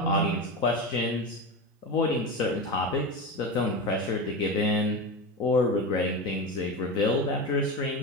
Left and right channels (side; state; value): both; normal; correlation 0.22